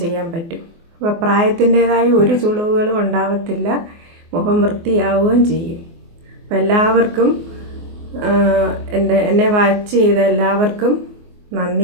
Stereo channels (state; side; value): late; left; 24 ms